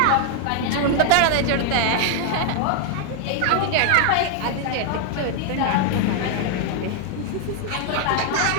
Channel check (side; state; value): both; different; correlation 0.01